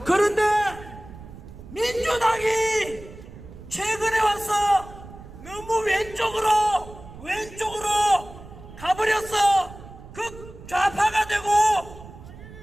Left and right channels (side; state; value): right; noise; rumble, 16 dB below the sound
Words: 그런데 민주당이 최근에 와서 너무 왼쪽으로 가버렸어. 극좌파가 되고